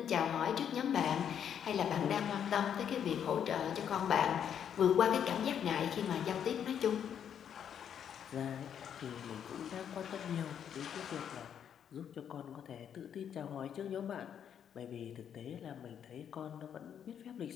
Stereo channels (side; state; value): right; quieter; 8.7 dB